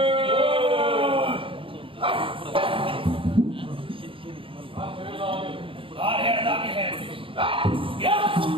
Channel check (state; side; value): late; left; 0.25 ms